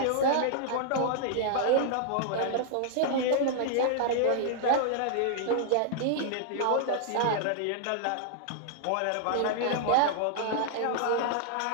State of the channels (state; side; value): different; both; correlation -0.01